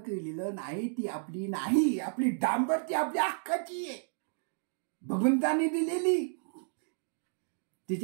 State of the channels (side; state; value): left; silent; digital silence